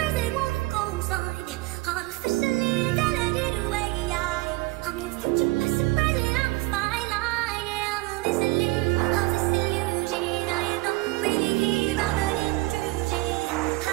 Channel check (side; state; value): left; quieter; 22.1 dB